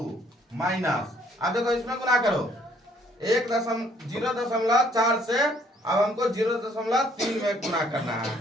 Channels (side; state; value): both; normal; correlation 0.63